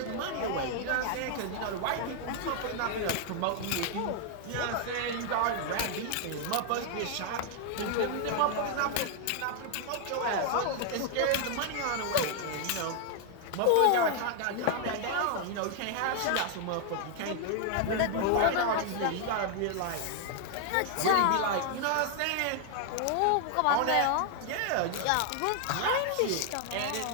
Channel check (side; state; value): both; different; correlation 0.00